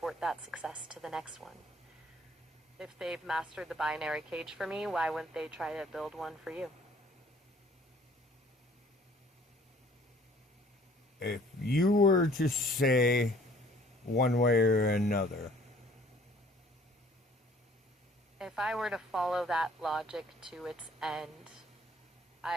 that success to the next one. If they've mastered the binary cage for me, why wouldn't they try to build one for you? If you were to say one way or another, If I were to follow that logic to its end,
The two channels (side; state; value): both; normal; correlation 0.56